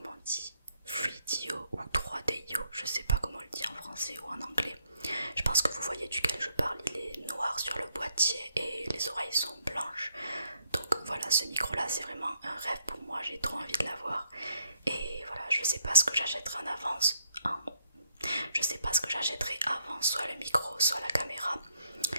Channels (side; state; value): both; inverted; correlation -0.74